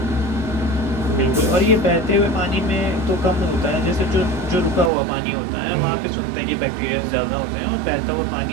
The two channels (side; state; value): left; drops out; at 4.9 s